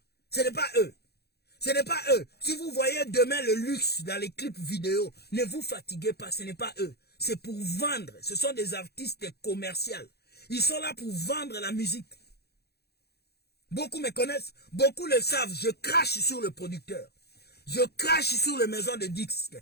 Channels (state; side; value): late; right; 0.47 ms